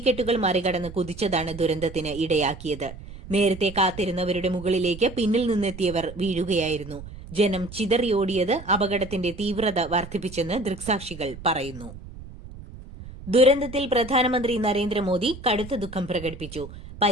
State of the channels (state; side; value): noise; right; rumble, 14 dB below the sound